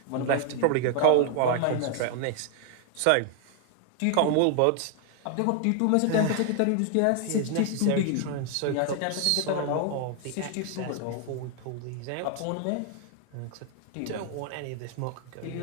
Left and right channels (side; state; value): both; different; correlation 0.00